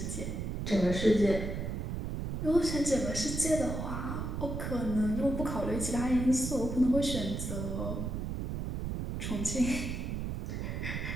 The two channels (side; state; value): right; noise; rumble, 3 dB below the sound